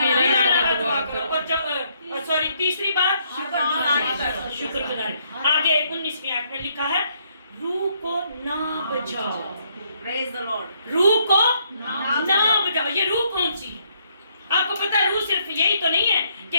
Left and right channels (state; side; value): inverted; both; correlation -0.71